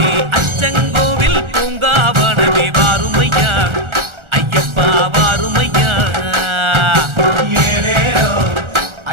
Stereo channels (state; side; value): late; left; 1.4 ms